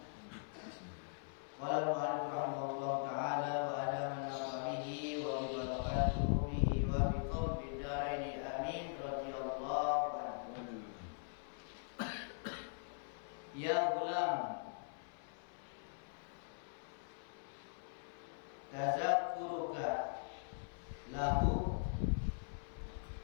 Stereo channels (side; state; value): right; silent; 50 dB below the other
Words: Qala al-mu'allif rahimahullahu ta'ala wa ada man nafa bihi wa bi barakatuhu bihi wa bi qawmi daraini amin radhiyallahu anhu. Ya gulam, tazakkuruka lahu